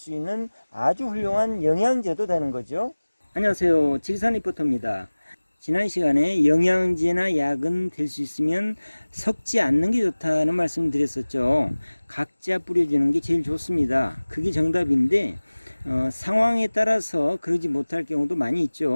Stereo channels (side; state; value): both; inverted; correlation -1.00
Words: 있는 아주 훌륭한 영양제도 되는 거죠. 안녕하세요, 지리산 리포터입니다. 지난 시간에 영양제나 약은 될 수 있으면 섞지 않는 게 좋다는 말씀을 드렸었죠. 각자 뿌려주는 게 제일 좋습니다. 그게 정답인데 상황에 따라서 그러지 못할 경우도 많이